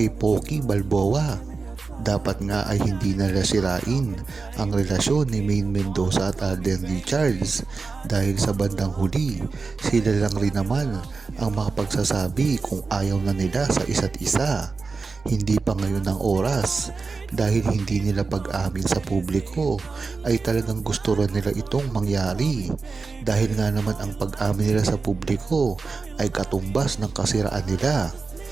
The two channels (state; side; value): quieter; left; 4.4 dB